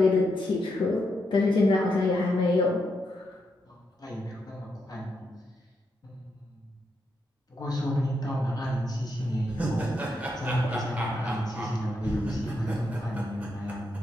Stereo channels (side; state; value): both; normal; correlation 0.82